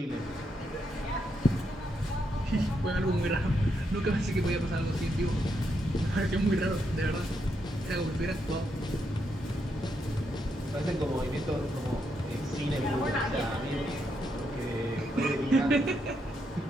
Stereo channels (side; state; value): both; normal; correlation 0.80